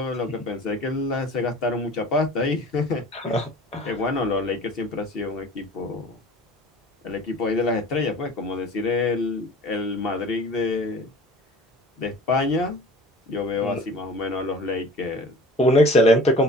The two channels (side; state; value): both; normal; correlation 0.43